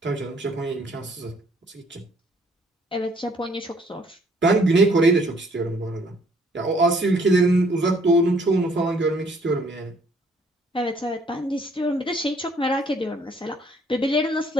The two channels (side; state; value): both; normal; correlation 0.63